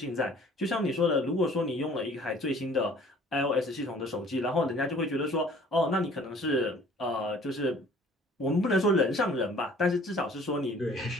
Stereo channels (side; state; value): both; normal; correlation 0.52